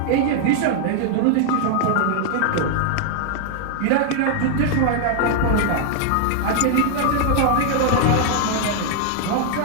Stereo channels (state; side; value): different; both; correlation 0.00